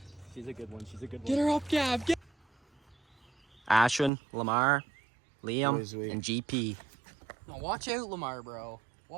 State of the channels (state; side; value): drops out; left; at 4.1 s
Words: she's a good one. She's a good one. Get her up, Gab. Ashwin, Lamar, Liam, Boys, wait. and GP. Now watch out, Lamar, bro.